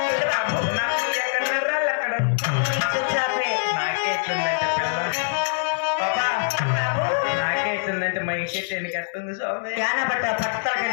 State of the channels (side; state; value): right; silent; 63 dB below the other